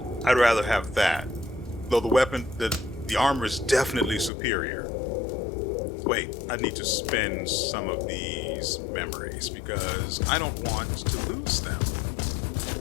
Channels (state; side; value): drops out; right; at 4.3 s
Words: I'd rather have that. Though the weapon, the armor is definitely superior. Wait, I need to spend some of these memories because I don't want to lose them.